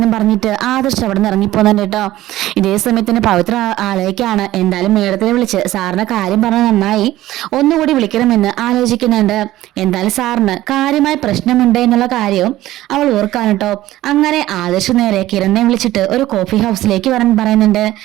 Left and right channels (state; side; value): quieter; left; 15.4 dB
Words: പറഞ്ഞിട്ട് ആദർശ് അവിടെ നിന്ന് ഇറങ്ങിപ്പോകുന്നുണ്ട് കേട്ടോ. ഇതേ സമയത്തിന് പവിത്ര ആലോചിക്കാണ്, എന്തായാലും മേഡത്തിനെ വിളിച്ച് സാറിന്റെ കാര്യം പറഞ്ഞ നന്നായി, ഒന്നുകൂടി വിളിക്കണമെന്ന് ആലോചിക്കുന്നുണ്ട്. എന്തായാലും സാറിന് കാര്യമായ പ്രശ്നമുണ്ട് എന്നുള്ള കാര്യവും അവൾ ഓർക്കാണ് കേട്ടോ. അങ്ങനെ ആദർശ് നേരെ കിരണിനെ വിളിച്ചിട്ട് ഒരു കോഫി ഹൗസിലേക്ക് വരാൻ പറയുന്നുണ്ട്.